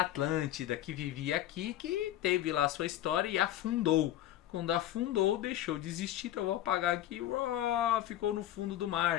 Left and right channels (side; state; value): right; quieter; 13.0 dB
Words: que vivia aqui, que teve lá a sua história e afundou. Quando afundou, deixou de existir. Então eu vou apagar aqui, ficou no fundo do